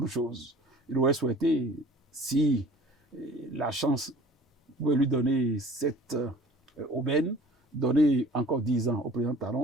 choses. Il aurait souhaité, si la chance pouvait lui donner cette aubaine, donner encore 10 ans au président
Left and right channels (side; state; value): both; normal; correlation 0.47